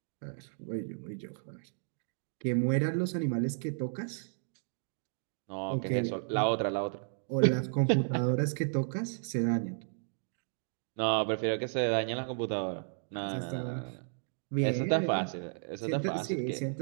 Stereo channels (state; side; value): silent; left; digital silence